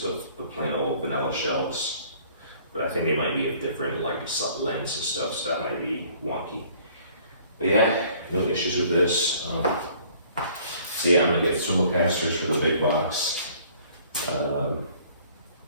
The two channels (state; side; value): inverted; both; correlation -0.56